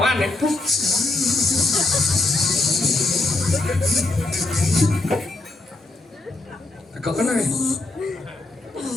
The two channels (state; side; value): quieter; right; 3.0 dB